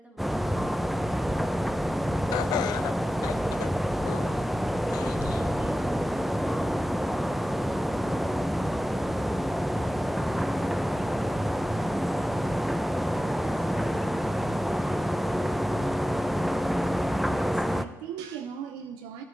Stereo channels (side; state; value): both; normal; correlation 0.94